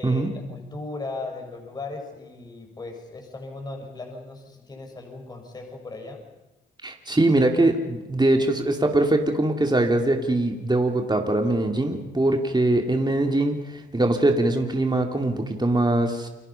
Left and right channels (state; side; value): normal; both; correlation 0.79